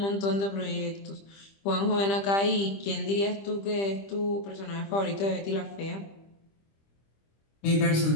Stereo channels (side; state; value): right; late; 25 ms